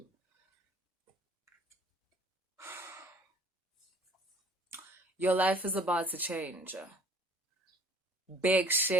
Your life is about to change. Big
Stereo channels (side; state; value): both; normal; correlation 0.53